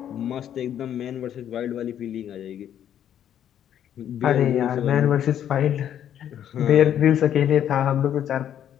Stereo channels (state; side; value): quieter; right; 10.1 dB